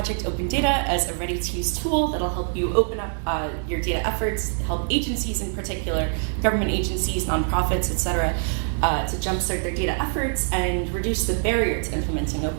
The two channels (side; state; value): left; silent; 62 dB below the other